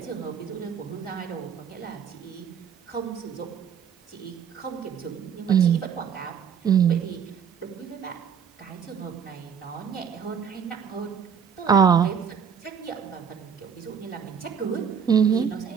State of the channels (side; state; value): left; quieter; 7.3 dB